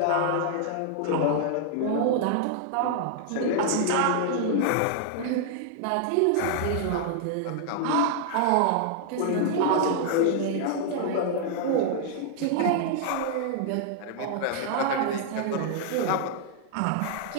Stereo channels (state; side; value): different; both; correlation -0.01